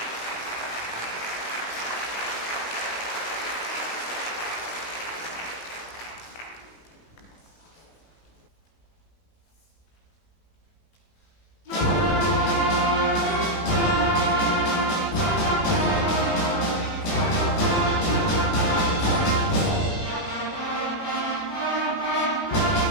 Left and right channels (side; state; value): right; late; 18 ms